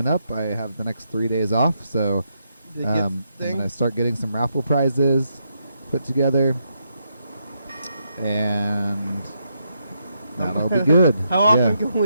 up. I have the next 3 days off, so I'm gonna start getting some raffle prizes put together, and that'll be good. How often can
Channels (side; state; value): both; inverted; correlation -0.79